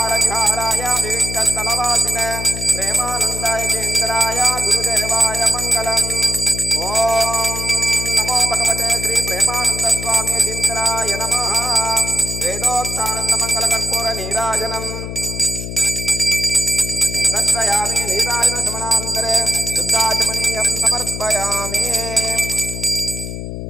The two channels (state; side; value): noise; left; hum, 7 dB below the sound